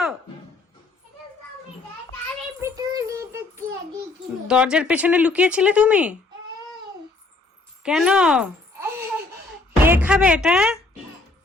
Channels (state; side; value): quieter; right; 3.3 dB